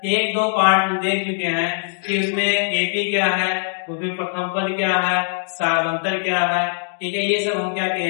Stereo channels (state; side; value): silent; right; digital silence